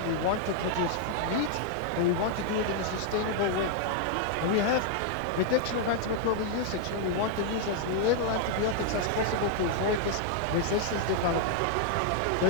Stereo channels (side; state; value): both; different; correlation 0.00